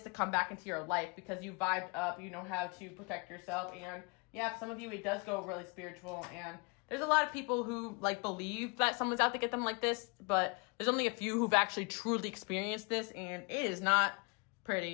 to come back into your life because you vibed up, you know how to protect yourself, and yeah, for some of you, it does go really spiritual. And there's a lot of people who like believe that someone's out to get them like this, but there's only a few who've actually truly experienced this, and it is not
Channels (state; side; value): quieter; right; 31.8 dB